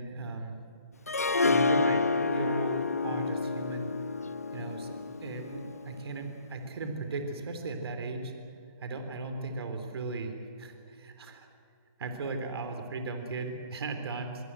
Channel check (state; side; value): inverted; both; correlation -0.61